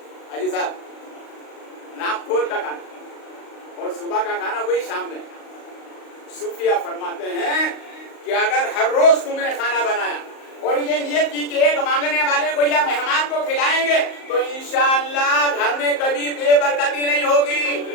حاجی صاحب, ناپ تول کا کھانا, اور صبح کا کھانا وہی شام میں. صوفیہ فرماتے ہیں کہ اگر ہر روز تم نے کھانا بنایا اور یہ نیت کی کہ 1 مانگنے والے کو یا مہمان کو کھلائیں گے تو انشاءاللہ گھر میں کبھی بے برکتی نہیں ہوگی,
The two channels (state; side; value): late; right; 38 ms